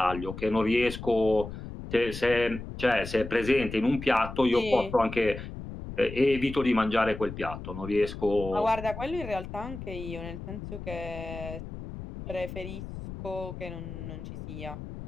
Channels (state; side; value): noise; left; rumble, 10 dB below the sound